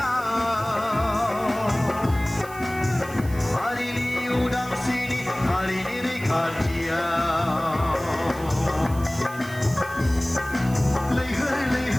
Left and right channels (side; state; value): right; noise; hiss, 18 dB below the sound